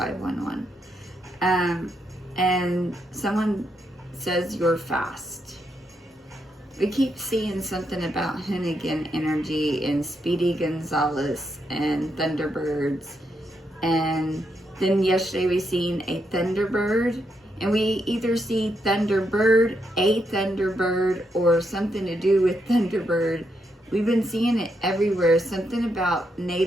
And someone says you're fast. We keep seeing something about Hoonigan Energy and Speedy Gonzalez and Thunderbirds. And then yesterday we seen a Thunderbird. And we either see Thunderbird, a Thunderbird, or something to do with Thunderbird. We've been seeing it everywhere. Something about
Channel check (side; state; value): both; normal; correlation 0.80